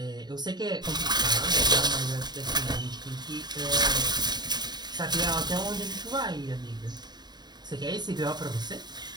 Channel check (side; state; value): left; late; 0.20 ms